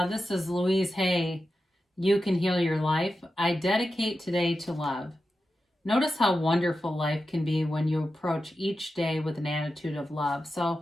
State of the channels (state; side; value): normal; both; correlation 0.91